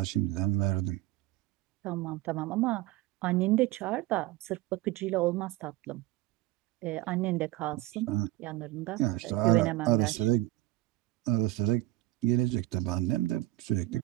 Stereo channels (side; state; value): left; quieter; 17.3 dB